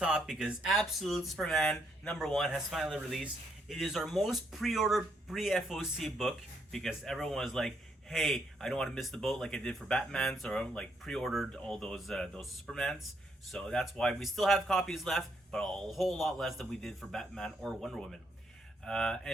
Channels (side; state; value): both; normal; correlation 0.74